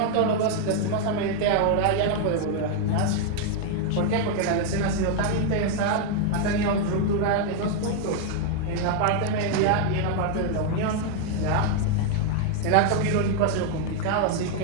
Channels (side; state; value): both; different; correlation 0.00